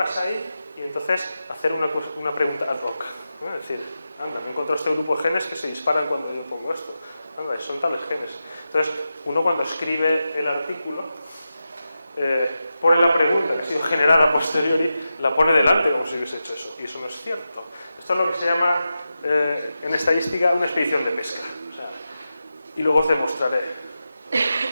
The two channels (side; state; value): both; inverted; correlation -0.91